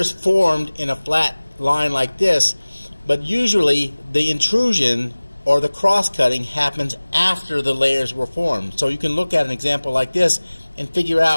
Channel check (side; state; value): both; inverted; correlation -1.00